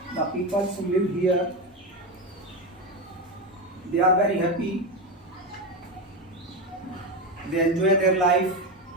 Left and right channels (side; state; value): both; normal; correlation 0.14